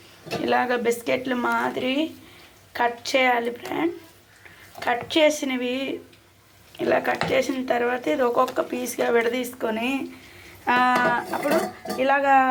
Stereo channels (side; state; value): both; identical; correlation 1.00